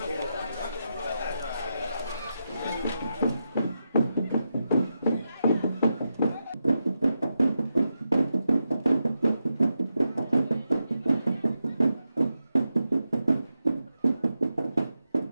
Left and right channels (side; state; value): both; inverted; correlation -0.87